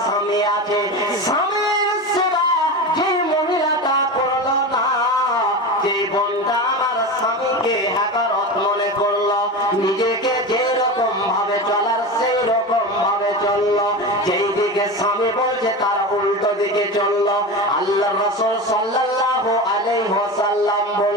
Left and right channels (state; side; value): normal; both; correlation 0.25